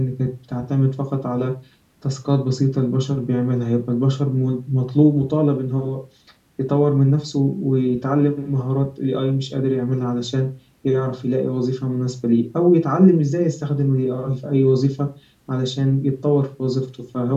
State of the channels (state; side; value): identical; both; correlation 1.00